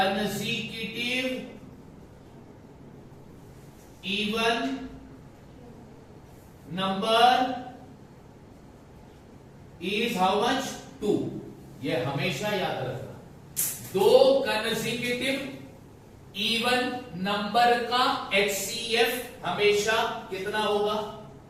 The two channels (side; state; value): both; identical; correlation 1.00